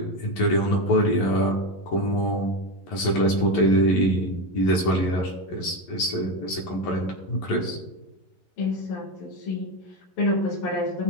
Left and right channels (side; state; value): right; late; 11 ms